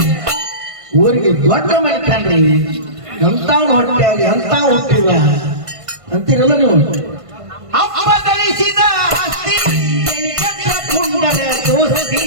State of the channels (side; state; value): left; late; 1.5 ms